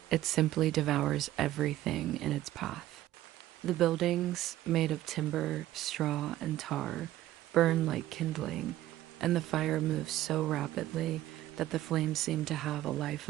It simply devours everything in its path. The buildings, made of timber, straw, and tar, burn like kindling, and the fire moves so rapidly that the flames seem to have a life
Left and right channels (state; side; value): quieter; left; 14.4 dB